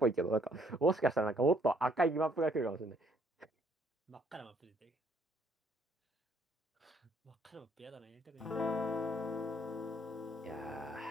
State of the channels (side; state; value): both; normal; correlation 0.66